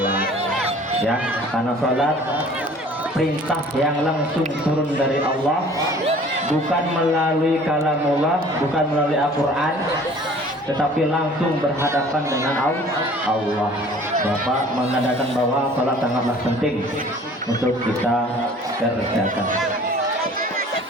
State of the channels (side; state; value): both; normal; correlation 0.49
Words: ya, karena sholat perintah yang langsung turun dari Allah, bukan melalui kalamullah, bukan melalui Al-Quran, tetapi langsung berhadapan dengan Allah. Bapak mengadakan bahwa sholat sangatlah penting untuk kita kerjakan.